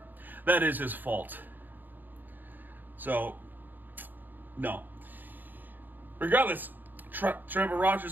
That is his fault. So no. Regardless, Trevor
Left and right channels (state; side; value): late; left; 0.088 ms